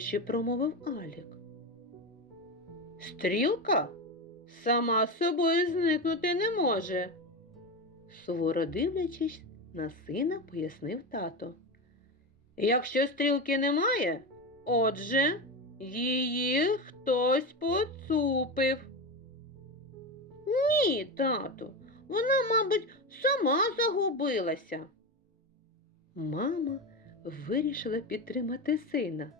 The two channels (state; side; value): normal; both; correlation 0.18